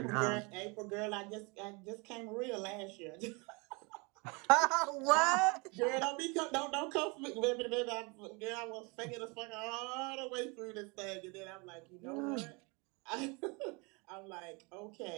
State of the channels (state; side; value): quieter; left; 29.6 dB